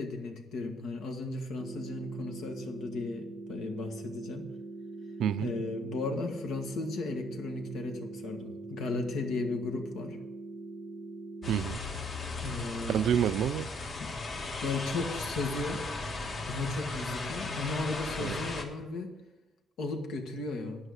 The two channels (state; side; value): normal; both; correlation 0.64